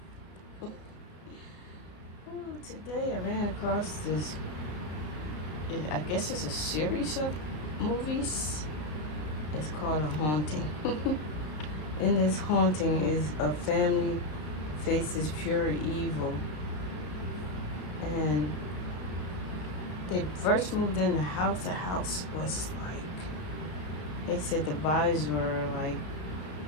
Ooh, today I ran across this, I guess it's a series of movies. It's called A Haunting. In this haunting is a family faces pure evil. And they first moved in the house. The house was like, they said the vibes were like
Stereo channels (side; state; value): right; late; 33 ms